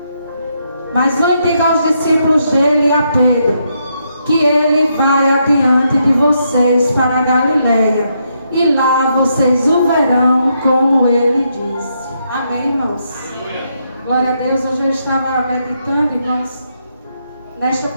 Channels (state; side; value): inverted; both; correlation -0.78